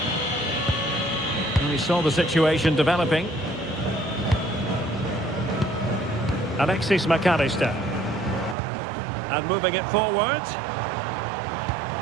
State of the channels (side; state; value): left; drops out; at 8.6 s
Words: We saw the situation developing. Alexis McAllister. And moving it forward.